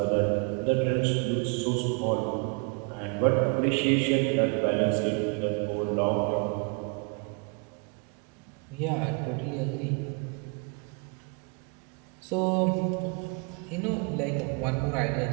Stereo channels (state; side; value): quieter; left; 34.8 dB